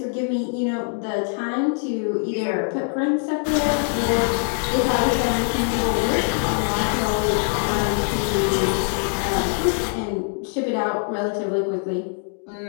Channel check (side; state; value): right; silent; 56 dB below the other